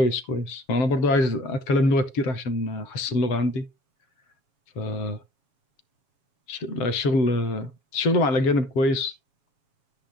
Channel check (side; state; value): right; late; 7.3 ms